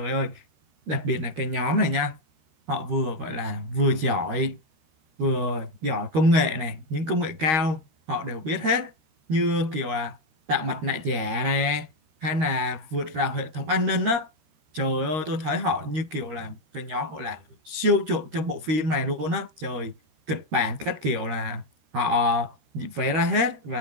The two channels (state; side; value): late; left; 13 ms